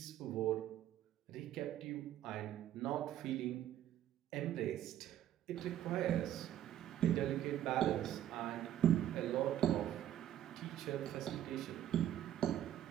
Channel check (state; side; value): quieter; left; 11.6 dB